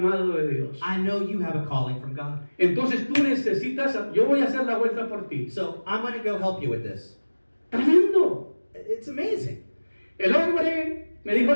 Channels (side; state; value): both; inverted; correlation -1.00